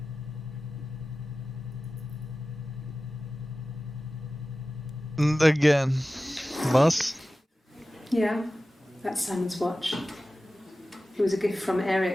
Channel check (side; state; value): both; normal; correlation 0.95